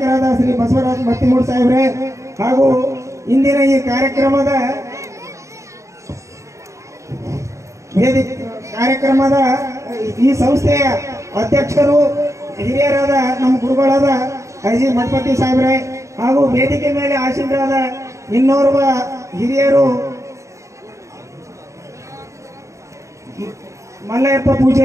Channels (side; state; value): left; late; 0.15 ms